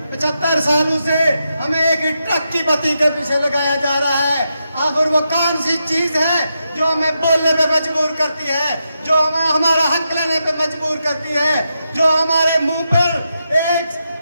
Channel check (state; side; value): inverted; both; correlation -0.85